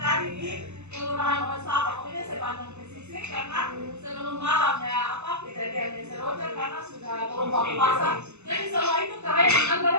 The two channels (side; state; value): left; late; 0.82 ms